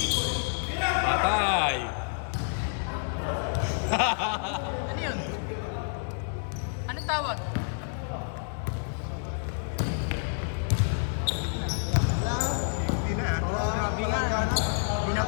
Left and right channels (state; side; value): silent; right; digital silence